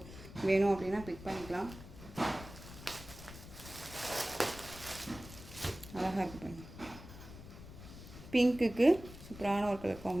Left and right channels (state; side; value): noise; left; rumble, 15 dB below the sound